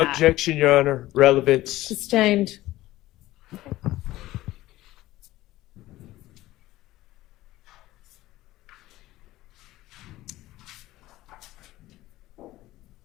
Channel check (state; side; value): quieter; right; 16.5 dB